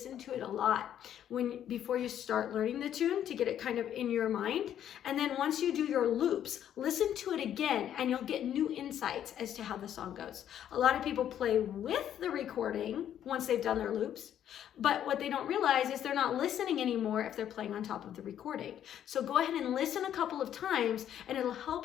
to it a lot before you start learning the tune, to get it kind of in your mind. And then once you do your loops, listen to it again and you'll get new insights as to how the song goes. A lot of people play with the recording once they've done their loops, but what they don't realize is they're not listening anymore if they're playing on top of the recording. So go ahead and listen a couple of times and it'll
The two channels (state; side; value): quieter; right; 10.3 dB